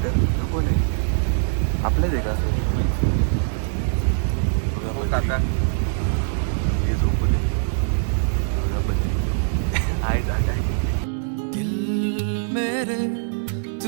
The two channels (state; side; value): silent; left; 64 dB below the other